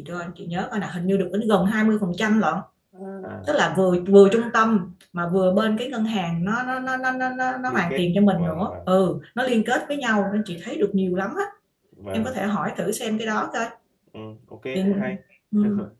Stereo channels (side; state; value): both; identical; correlation 1.00